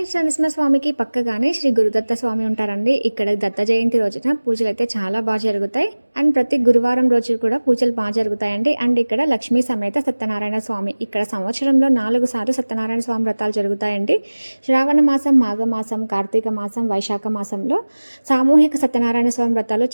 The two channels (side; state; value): both; inverted; correlation -1.00